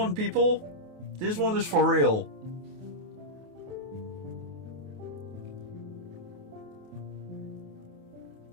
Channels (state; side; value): late; left; 28 ms